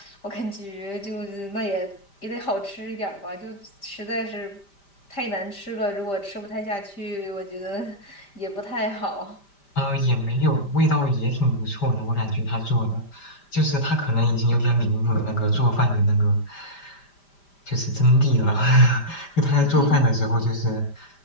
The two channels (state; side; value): late; right; 5.1 ms